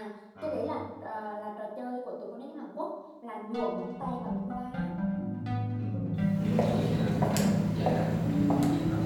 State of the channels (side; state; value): both; identical; correlation 1.00